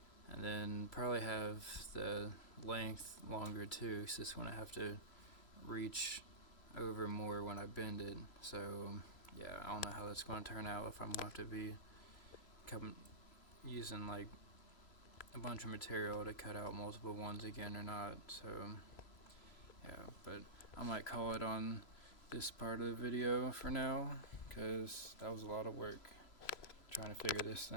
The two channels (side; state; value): right; late; 3.0 ms